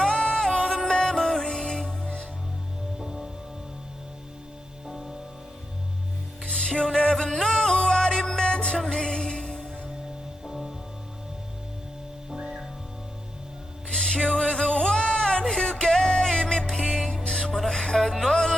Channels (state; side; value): normal; both; correlation 0.85